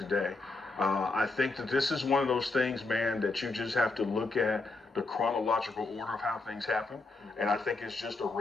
I think that this is one of those things, man, that you just have to look at the chronological order of how things happen. And I think it's just a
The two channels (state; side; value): quieter; right; 3.4 dB